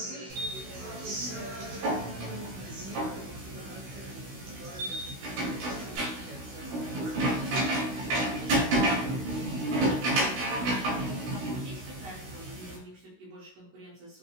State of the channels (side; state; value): left; late; 16 ms